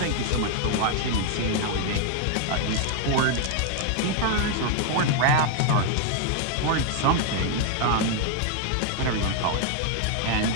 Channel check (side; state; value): both; different; correlation 0.00